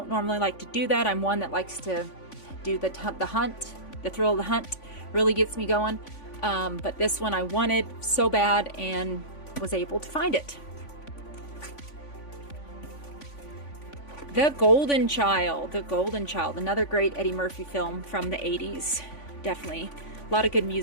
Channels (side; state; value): right; late; 3.5 ms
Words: normally like to do that. I'm one that likes to do the hunt. The thrill of the hunt really gets me going. But this one I wanted so bad and was able to find it. The Golden Child. The Golden Child. Another great Eddie Murphy film from the 80s. Definitely. A lot of good